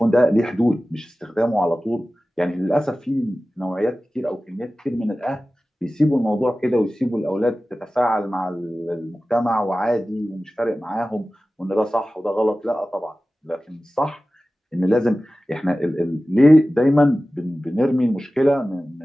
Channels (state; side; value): normal; both; correlation 0.96